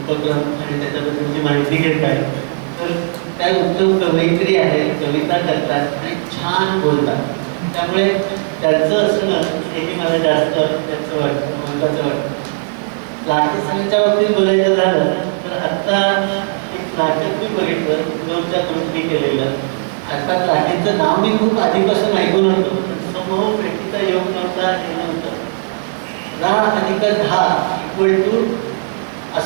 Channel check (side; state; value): left; silent; digital silence